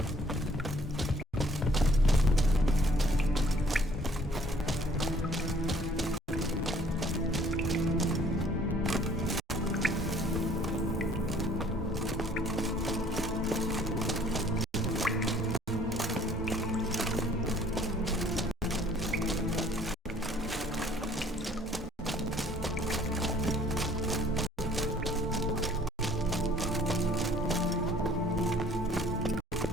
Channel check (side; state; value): both; normal; correlation 0.57